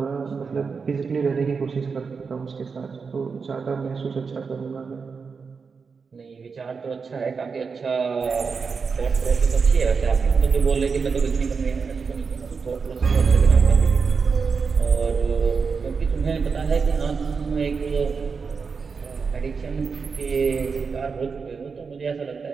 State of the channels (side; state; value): left; quieter; 5.3 dB